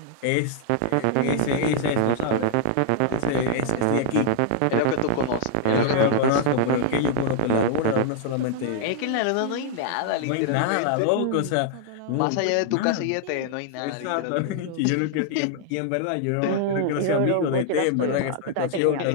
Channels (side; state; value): both; different; correlation 0.00